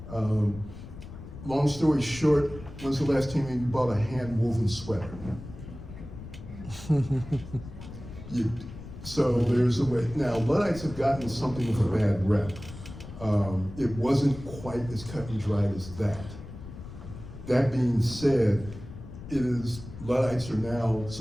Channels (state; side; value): noise; left; rumble, 13 dB below the sound